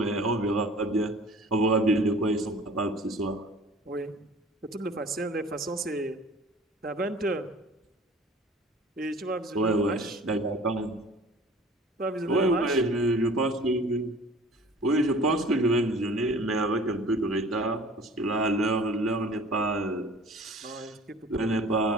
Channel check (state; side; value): normal; both; correlation 0.46